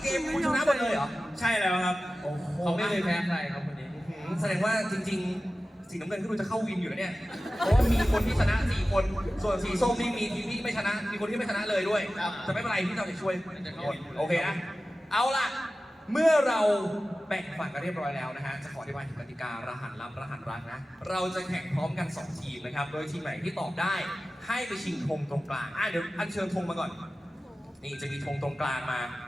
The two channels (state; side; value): normal; both; correlation 0.95